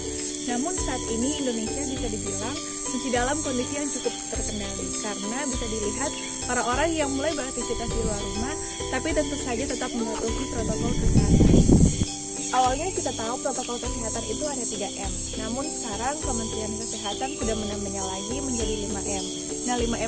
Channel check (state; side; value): identical; both; correlation 1.00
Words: Namun saat ini Indonesia bisa dibilang masih dalam kondisi yang cukup terkendali, karena bisa dilihat para orang yang mulai beraktivitas di luar rumah, tapi tentu saja tetap mematuhi protokol kesehatan. Awalnya kita tahu protokol kesehatan itu ada 3M, namun sekarang Kementerian Kesehatan sudah menambahnya lagi menjadi 5M. Nah,